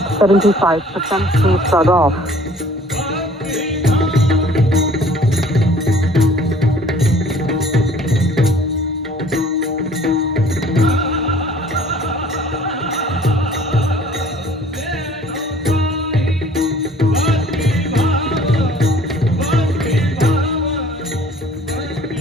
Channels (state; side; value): normal; both; correlation 0.53